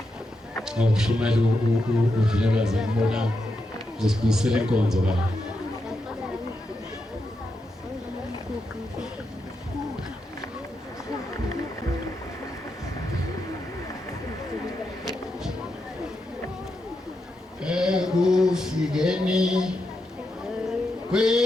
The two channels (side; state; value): both; normal; correlation 0.85